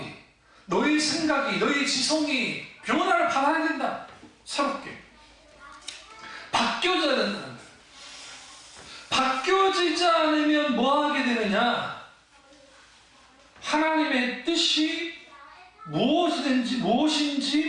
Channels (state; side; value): identical; both; correlation 1.00